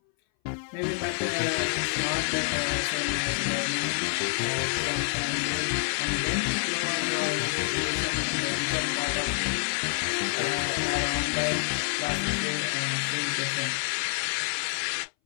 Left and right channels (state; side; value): silent; right; 60 dB below the other